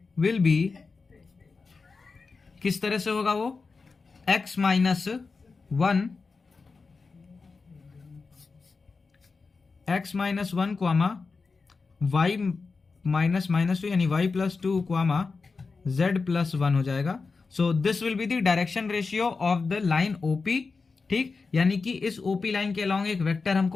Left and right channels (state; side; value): quieter; right; 4.4 dB